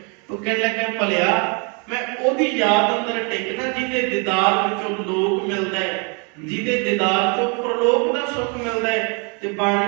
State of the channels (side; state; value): left; quieter; 34.8 dB